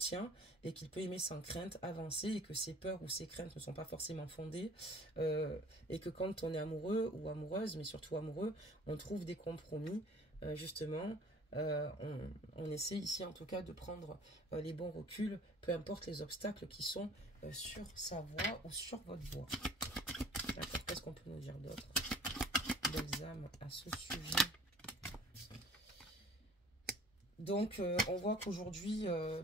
et qu'il peut aimer sans crainte, avancer, et que ses peurs ou ses craintes ne sont pas forcément fondées, et que quand on est amoureux ou amoureuse, mais surtout amoureux, on trouve des compromis, justement. On essaie ici en tout cas de prendre les bons reculs, peu importe les obstacles qui sont sur sa voie ou sur votre voie. D'accord, qu'est-ce qu'on peut nous dire d'autre, belles âmes, à ce sujet? Donc, on voit qu'aujourd'hui,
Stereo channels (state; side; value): normal; both; correlation 0.49